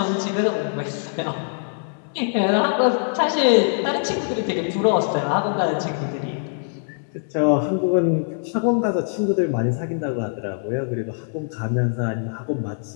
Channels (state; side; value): silent; right; 63 dB below the other